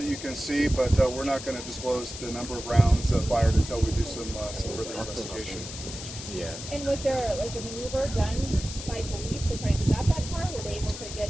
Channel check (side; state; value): left; noise; hiss, 10 dB below the sound